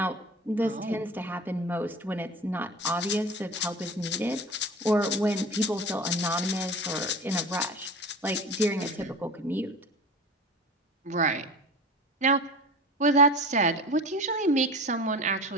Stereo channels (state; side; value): normal; both; correlation 0.34